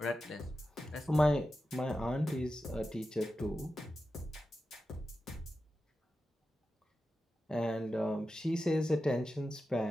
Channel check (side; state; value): both; normal; correlation 0.91